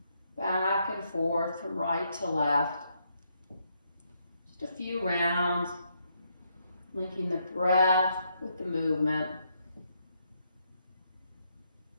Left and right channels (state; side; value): inverted; both; correlation -0.76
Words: back and forth from right to left. Just a few rounds, linking the breath with the movement.